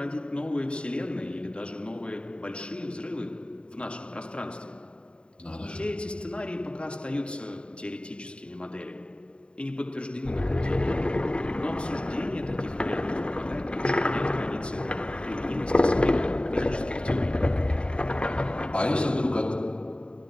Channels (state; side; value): late; right; 0.053 ms